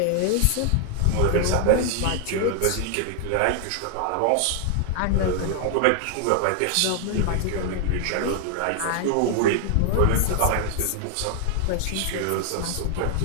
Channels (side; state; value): both; different; correlation 0.00